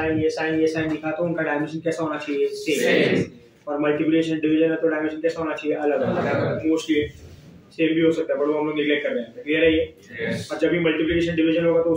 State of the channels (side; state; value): both; identical; correlation 1.00